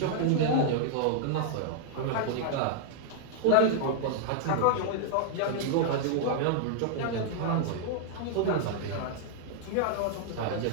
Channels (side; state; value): both; different; correlation -0.01